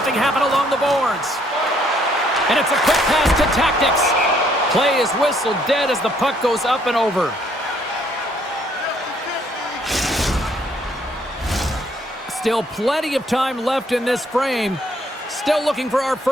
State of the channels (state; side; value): normal; both; correlation 0.66